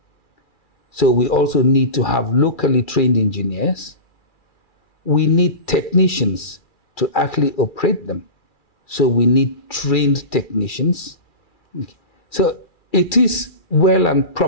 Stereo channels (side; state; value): right; late; 2.3 ms